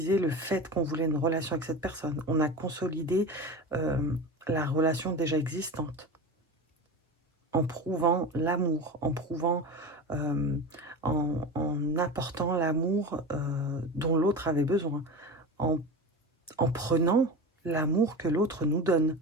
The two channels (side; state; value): both; normal; correlation 0.28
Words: le fait qu'on voulait une relation avec cette personne. On a consolidé la relation déjà existante en prouvant l'amour, en prouvant, en apportant l'amour dont l'autre avait besoin, en prenant l'amour que l'autre nous donne,